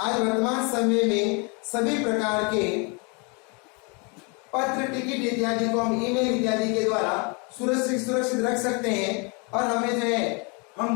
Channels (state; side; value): quieter; right; 32.5 dB